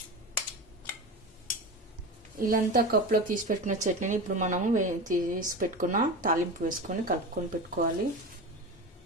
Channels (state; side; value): normal; both; correlation 0.26